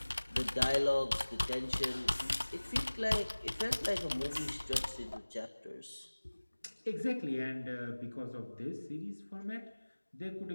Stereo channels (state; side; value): inverted; both; correlation -1.00